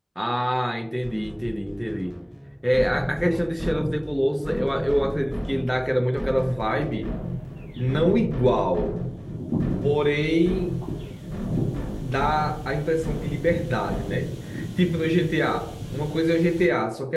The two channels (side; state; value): both; identical; correlation 1.00